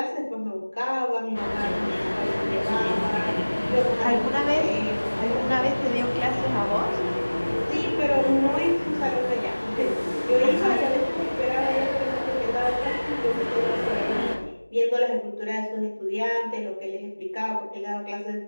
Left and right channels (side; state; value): both; inverted; correlation -1.00